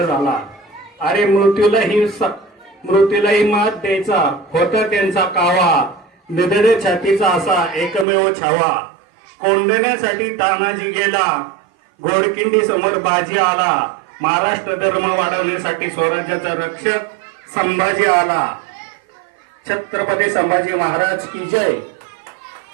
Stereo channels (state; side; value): drops out; left; at 8.1 s